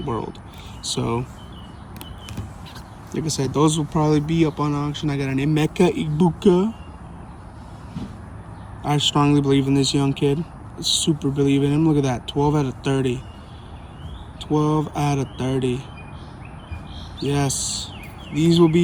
So, like I said, those will probably be up on auction. I got an Emeka Ibuka. I strongly believe in this young kid. I super believe in him. Look at that. 12 out of 30. 12 out of 30. Yes. These will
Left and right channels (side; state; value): both; identical; correlation 1.00